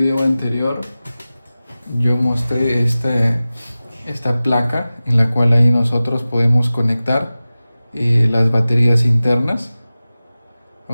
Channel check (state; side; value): inverted; both; correlation -0.96